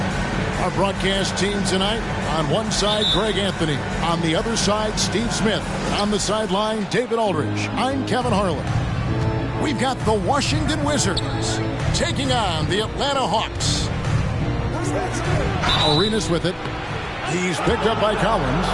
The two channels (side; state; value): both; identical; correlation 1.00